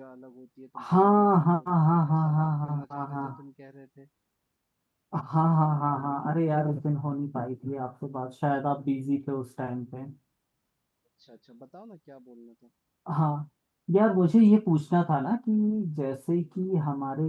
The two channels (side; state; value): both; identical; correlation 1.00